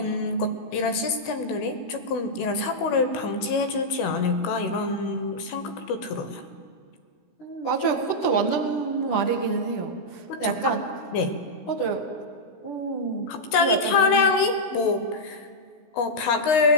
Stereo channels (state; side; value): late; right; 16 ms